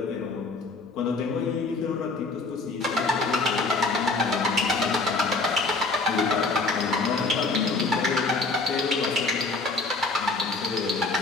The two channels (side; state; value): right; quieter; 3.7 dB